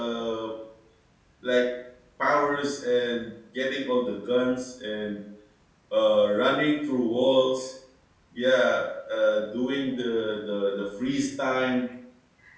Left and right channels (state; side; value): identical; both; correlation 1.00